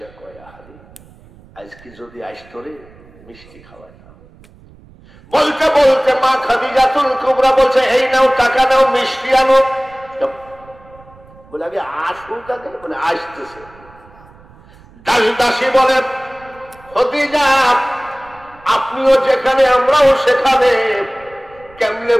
কয়, আরে আজকে যদি আসতো রে, মিষ্টি খাওয়ায় না। বলতে বলতে মা খাদিজাতুল কুবরা বলছে, এই নাও টাকা নাও, মিষ্টি আনো। বলে আগে আসুক আগে। বলে আসতেছে। দাস দাসী বলে, খাদিজা আপনিও যেখানে আমরাও সেখানে, কেমনে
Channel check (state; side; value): noise; right; rumble, 25 dB below the sound